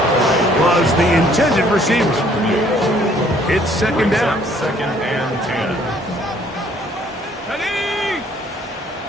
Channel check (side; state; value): both; normal; correlation 0.61